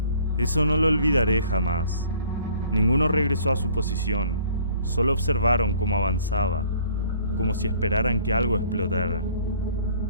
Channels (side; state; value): both; inverted; correlation -0.55